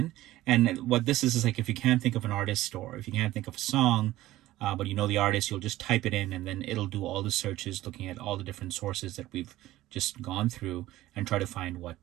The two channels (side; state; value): left; quieter; 16.0 dB